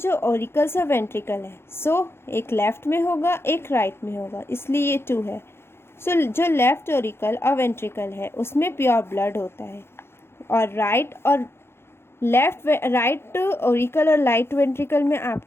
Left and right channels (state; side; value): late; right; 0.12 ms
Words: ऑरिकल्स और वेंट्रिकल है, सो एक लेफ्ट में होगा एक राइट में होगा, इसलिए ये 2 है। सो जो लेफ्ट ऑरिकल और वेंट्रिकल है उसमें प्योर ब्लड होता है, और राइट ऑरिकल और राइट वेंट्रिकल में